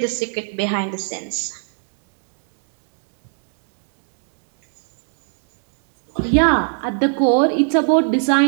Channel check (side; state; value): left; silent; 56 dB below the other